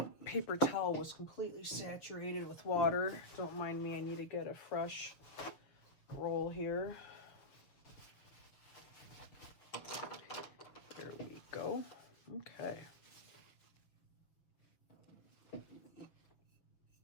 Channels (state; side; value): late; right; 6.9 ms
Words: paper towel was completely saturated with water. Don't mind me, I need to get a fresh roll here. There we go. Okay.